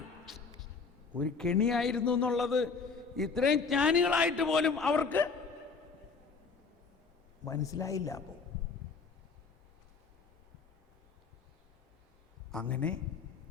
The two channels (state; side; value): quieter; right; 5.0 dB